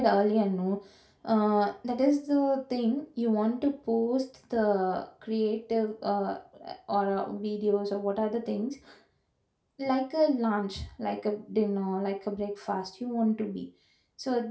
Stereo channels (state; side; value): identical; both; correlation 1.00